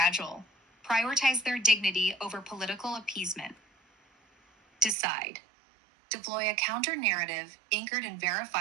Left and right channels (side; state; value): left; drops out; at 5.0 s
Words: Prioritize their dignity over political appeasement. Decide. Deploy a counter-narrative anchored in